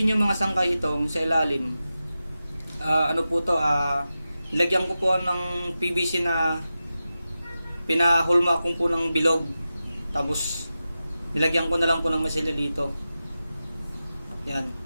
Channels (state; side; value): inverted; both; correlation -0.93